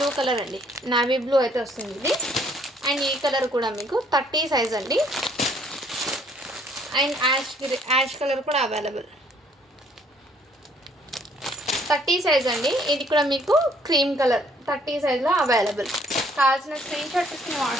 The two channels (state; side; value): normal; both; correlation 0.63